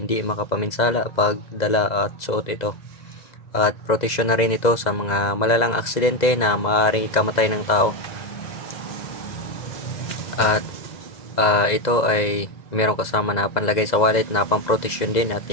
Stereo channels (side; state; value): right; late; 2.0 ms